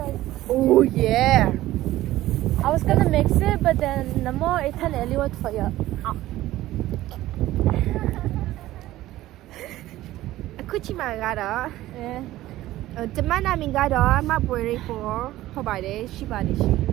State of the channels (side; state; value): left; quieter; 15.6 dB